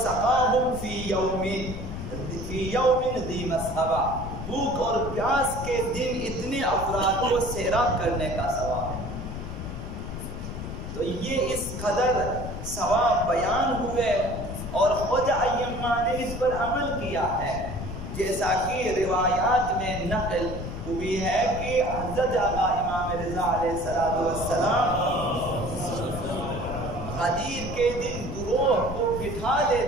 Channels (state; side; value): noise; left; rumble, 7 dB below the sound